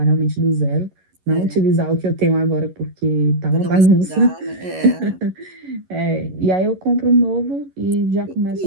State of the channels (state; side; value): late; left; 11 ms